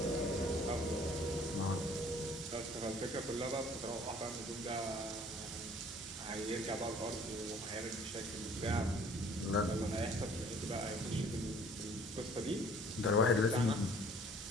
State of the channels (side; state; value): both; normal; correlation 0.54